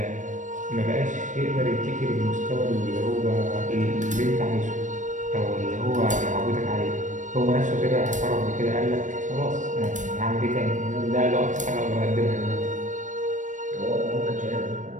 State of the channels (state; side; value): late; left; 0.37 ms